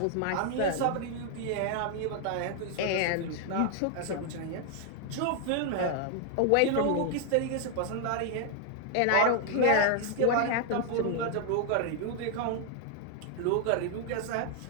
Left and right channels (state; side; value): different; both; correlation 0.00